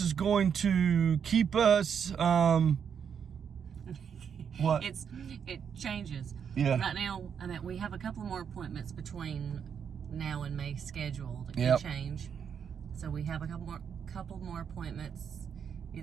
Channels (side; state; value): left; quieter; 7.4 dB